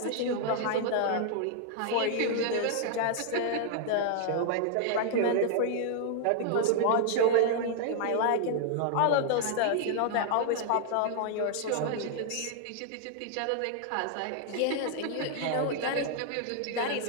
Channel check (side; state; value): both; different; correlation 0.00